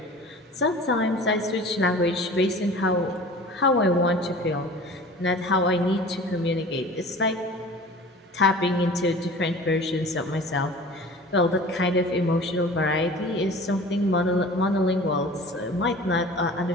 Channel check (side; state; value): both; normal; correlation 0.41